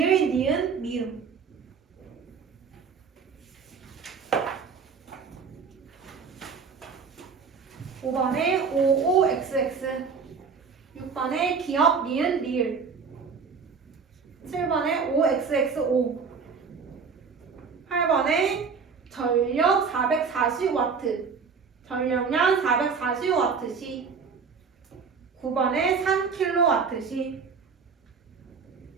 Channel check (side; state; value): left; quieter; 5.6 dB